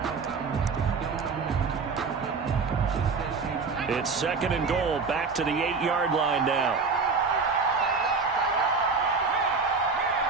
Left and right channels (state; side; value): quieter; left; 4.7 dB